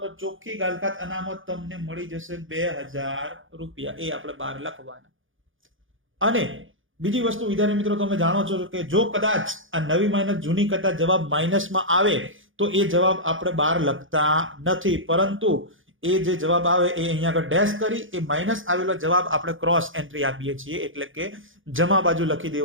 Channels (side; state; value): left; late; 0.58 ms